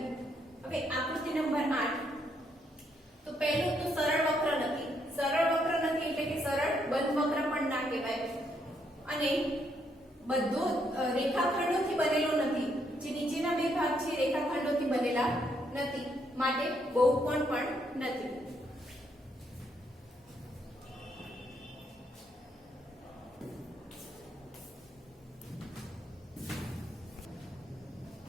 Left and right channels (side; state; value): both; normal; correlation 0.74